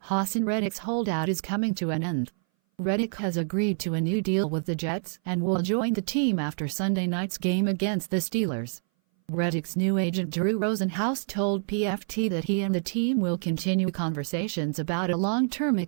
Haason Reddick's holdout is coming to an end. Reddick has agreed to a new deal with the Jets and will join the team after Sunday night's game against the Steelers. Reddick's new agent Drew Rosenhaus told PFT that he and the team will continue conversations about a long-term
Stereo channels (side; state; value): left; silent; 58 dB below the other